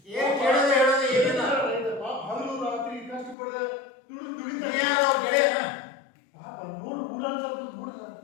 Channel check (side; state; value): right; drops out; at 3.4 s